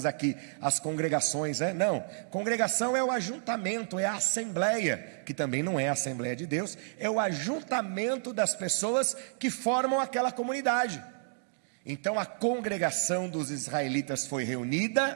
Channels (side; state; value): left; silent; digital silence